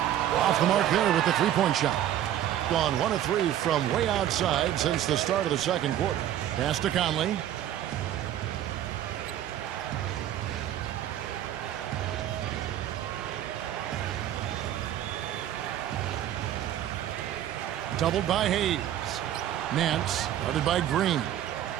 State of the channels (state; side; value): quieter; left; 11.6 dB